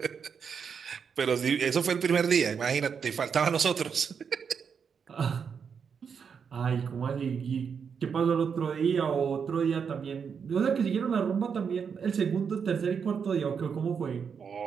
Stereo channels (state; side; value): quieter; left; 6.6 dB